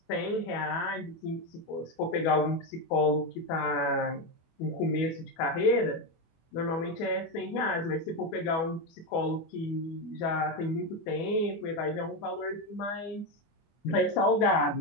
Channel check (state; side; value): late; right; 25 ms